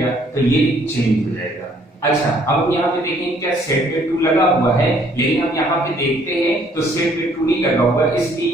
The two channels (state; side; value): normal; both; correlation 0.63